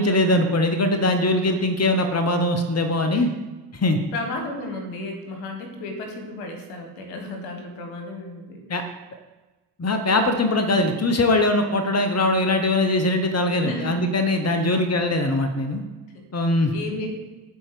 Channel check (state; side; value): normal; both; correlation 0.08